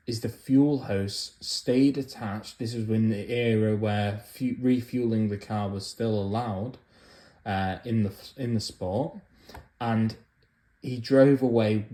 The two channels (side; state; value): both; identical; correlation 1.00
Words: is the fuel hose stayed attached. This was in the era where refueling the car was still allowed in the sport, and he drove away